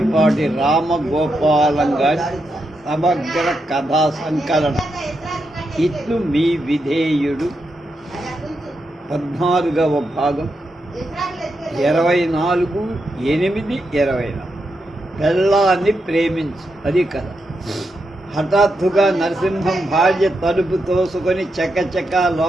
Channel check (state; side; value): normal; both; correlation 0.84